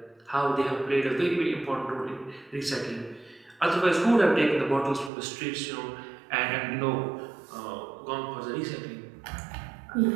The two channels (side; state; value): left; drops out; at 5.1 s